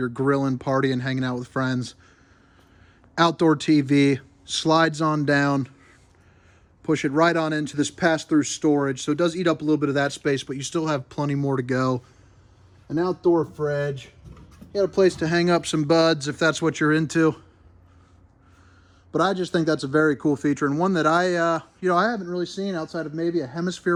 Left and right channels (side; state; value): both; identical; correlation 1.00